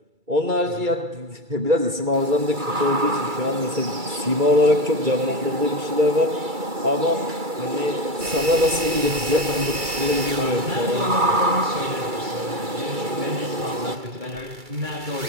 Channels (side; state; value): left; late; 2.3 ms